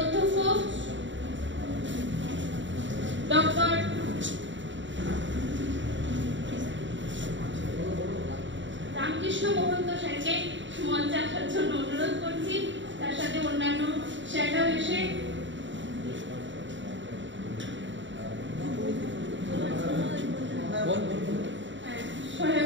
ডক্টর রামকৃষ্ণ মহন্ত স্যারকে মঞ্চে আসার জন্য অনুরোধ করছি। তার সাথে অন্যান্য স্যাররাও এসে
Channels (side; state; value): left; late; 0.54 ms